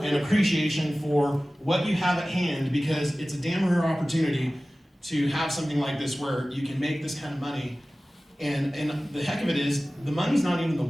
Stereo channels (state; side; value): normal; both; correlation 0.97